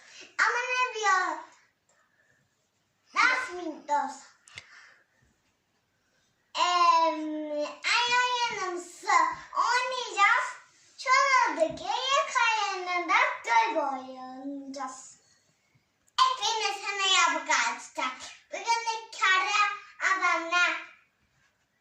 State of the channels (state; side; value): identical; both; correlation 1.00